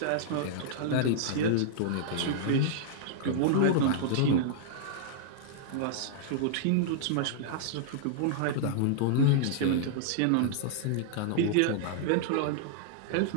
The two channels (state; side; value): different; both; correlation -0.01